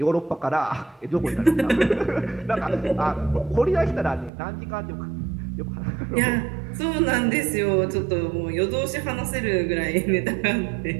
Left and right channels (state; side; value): drops out; left; at 4.3 s